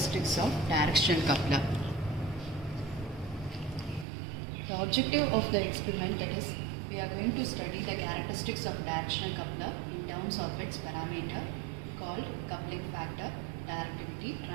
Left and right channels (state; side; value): drops out; left; at 4.0 s